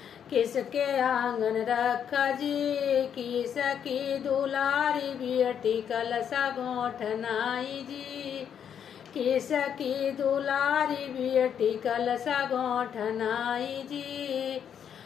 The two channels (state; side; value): quieter; right; 8.4 dB